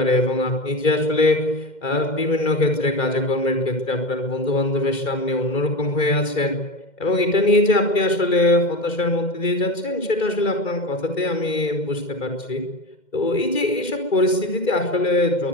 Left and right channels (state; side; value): late; right; 2.1 ms